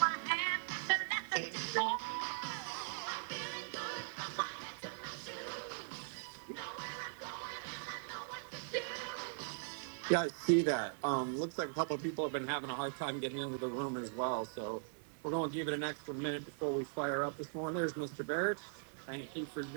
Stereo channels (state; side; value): silent; left; digital silence